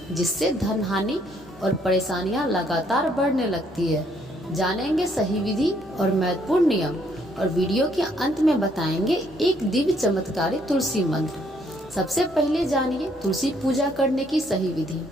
जिससे धन हानि और परेशानियां लगातार बढ़ने लगती है। जानेंगे सही विधि और महत्वपूर्ण नियम, और वीडियो के अंत में बताएंगे एक दिव्य चमत्कारी तुलसी मंत्र। सबसे पहले जानिए तुलसी पूजा करने की सही विधि।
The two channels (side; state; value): both; normal; correlation 0.68